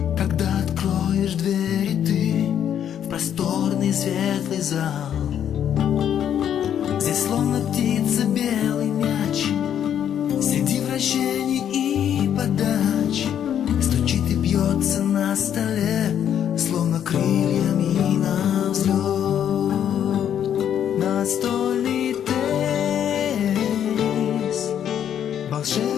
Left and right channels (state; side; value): quieter; right; 9.5 dB